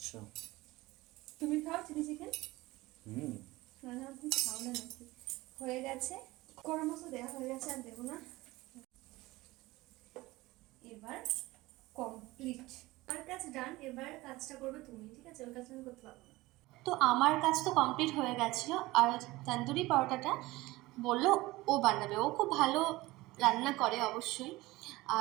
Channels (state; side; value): quieter; left; 19.7 dB